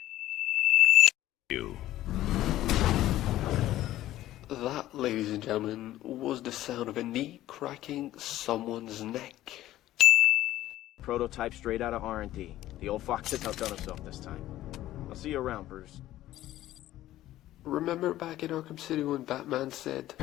You. That, ladies and gentlemen, was the sound of a knee cracking someone's neck. Prototype straight out of R&D. The old fox has outdone himself this time. I'll see you around, Bruce. Remember back in Arkham City when Batman said,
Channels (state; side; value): quieter; right; 14.4 dB